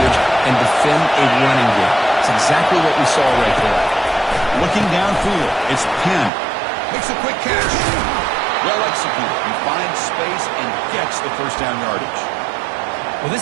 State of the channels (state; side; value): drops out; left; at 6.3 s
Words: and defend a running game. It's exactly what we saw right there. Looking downfield, it's Penn. Makes a quick catch. Well executed. He finds space and gets the first down yardage. Well,